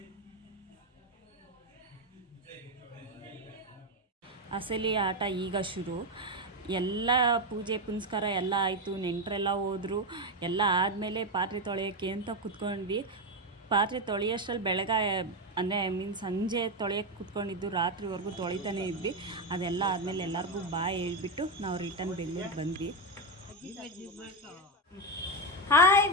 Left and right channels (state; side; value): normal; both; correlation 0.09